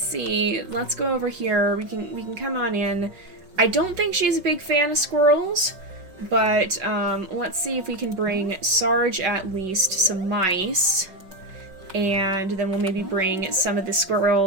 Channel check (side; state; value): left; late; 5.3 ms